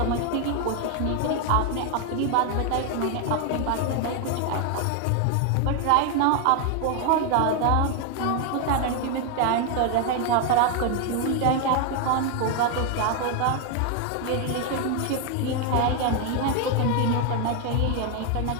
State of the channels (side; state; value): both; different; correlation 0.00